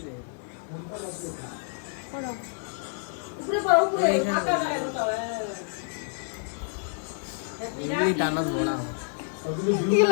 উপরে পড়ো উপরে ফাঁকা জায়গা দাও এই টানা বড়া কি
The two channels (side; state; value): right; silent; digital silence